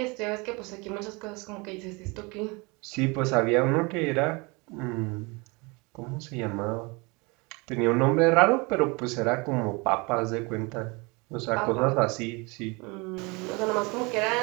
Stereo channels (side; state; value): left; quieter; 27.6 dB